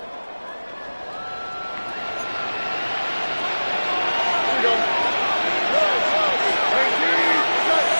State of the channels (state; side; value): inverted; both; correlation -1.00